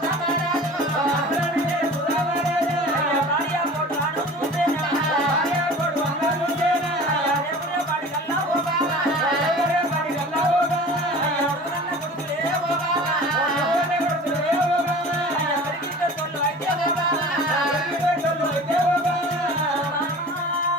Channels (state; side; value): normal; both; correlation 0.40